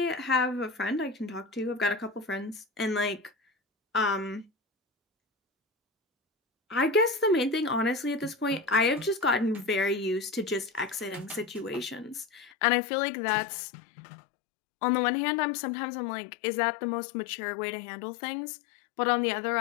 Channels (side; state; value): right; drops out; at 12.5 s